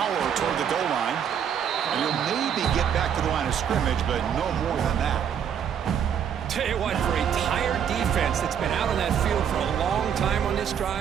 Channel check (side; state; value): left; quieter; 8.4 dB